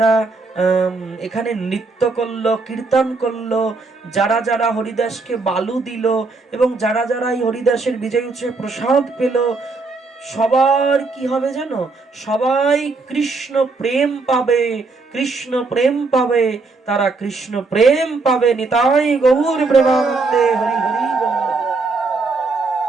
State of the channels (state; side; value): quieter; left; 3.9 dB